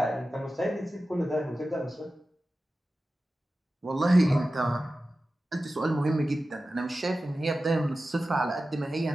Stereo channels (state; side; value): normal; both; correlation 0.94